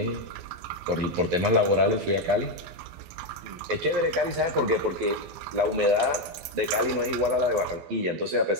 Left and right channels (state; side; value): late; left; 12 ms